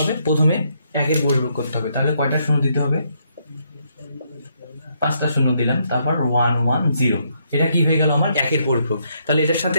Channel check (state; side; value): inverted; both; correlation -0.74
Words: প্রথমে 1 এর পরিপূরক করতে হবে। তাহলে কয়টা 0 দিতে হবে, 5টা 0 দিলাম, তারপর 1 1 0। এটা কি হয়ে গেল, আমার 1 এর পরিপূরক। তাহলে এটার